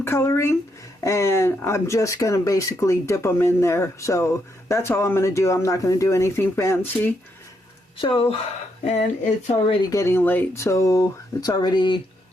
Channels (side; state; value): both; normal; correlation 0.78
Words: coloring, and I'm just going to basically dip them in there. So that's all I'm going to do. I'm not going to do anything fancy. So, and it's already getting late, so it's already